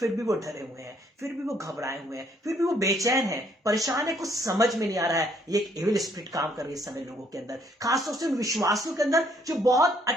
भी वो डरे हुए हैं, फिर भी वो घबराए हुए हैं, फिर भी वो बेचैन है, परेशान है, कुछ समझ में नहीं आ रहा है। ये एक एविल स्पिरिट काम कर रही है इस समय लोगों के अंदर, खासतौर से उन विश्वासियों के अंदर जो बहुत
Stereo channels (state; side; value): normal; both; correlation 0.67